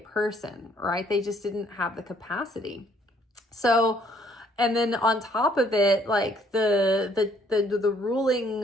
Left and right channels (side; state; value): both; normal; correlation 0.64